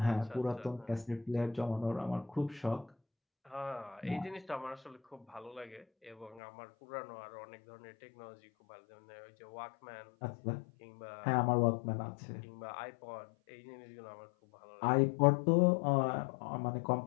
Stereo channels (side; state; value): right; drops out; at 6.4 s